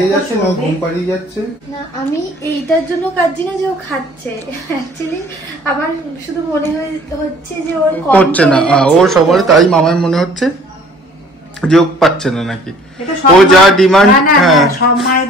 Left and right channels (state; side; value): normal; both; correlation 0.53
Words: যাচ্ছে নয় ঘুম পাড়িয়ে যাচ্ছে। না আমি এইটার জন্য কাঁদছি না যে ও খাচ্ছে, অ্যাকচুয়ালি আমার শুধু মনে হচ্ছে যে ওর করছে না, ওর সবার তাই মামার মনে হচ্ছে যে ও পাচ্ছে না নাকি, ও যা ডিমান্ড। হ্যাঁ